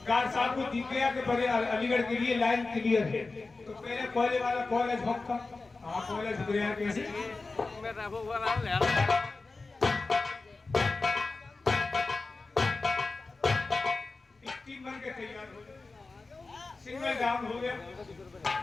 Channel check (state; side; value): quieter; right; 3.7 dB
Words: कार साहब को दिख गया कि बड़े अलीगढ़ के लिए लाइन क्लियर है, तो पहले कोयले वाला कॉलेज भक्का। हाँ कॉलेज दिख रहा है कैसे स्टीम बन के तैयार हो गया। सिंगल डाउन हो गया।